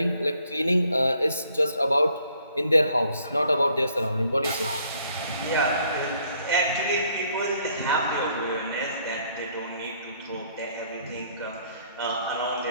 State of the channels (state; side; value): inverted; both; correlation -0.65